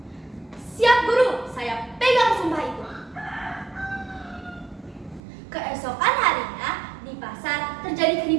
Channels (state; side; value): drops out; left; at 5.2 s